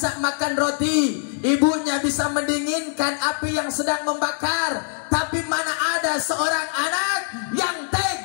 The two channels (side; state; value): right; silent; digital silence